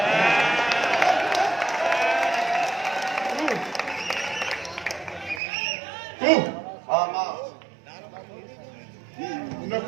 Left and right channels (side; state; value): left; drops out; at 5.4 s